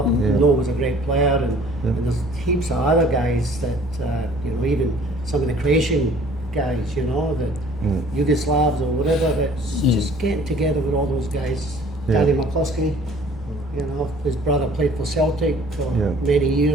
him. Noel was a great player, and there's heaps of other guys that you know, even some of the Croatian guys. You know, the Yugoslavs or whatever. That's just getting together with all those guys. Yeah. Danny McCloskey. You know, his brother played for Celtic for Yeah. many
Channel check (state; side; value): normal; both; correlation 0.52